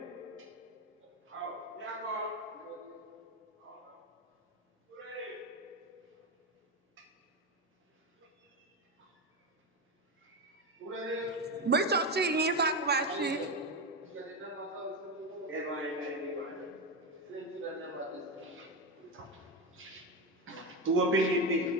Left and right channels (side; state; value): both; normal; correlation 0.14